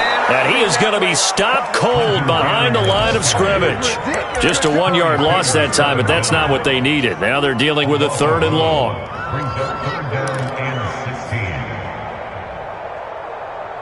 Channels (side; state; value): both; identical; correlation 1.00